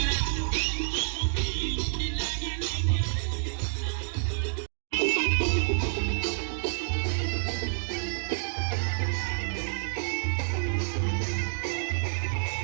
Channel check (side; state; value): left; silent; digital silence